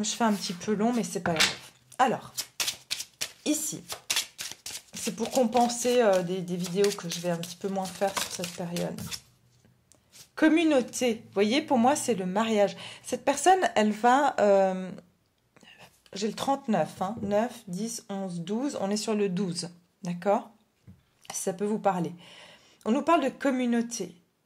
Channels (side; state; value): both; identical; correlation 1.00